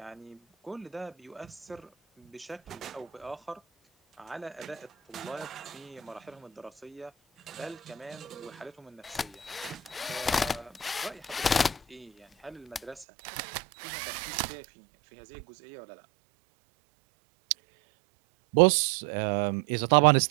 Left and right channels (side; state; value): left; drops out; at 13.1 s